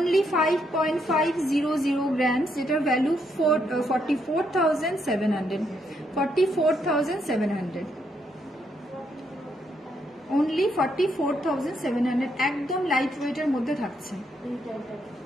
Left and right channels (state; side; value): normal; both; correlation 0.76